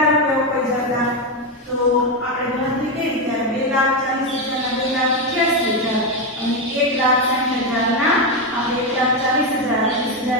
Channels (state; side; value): normal; both; correlation 0.09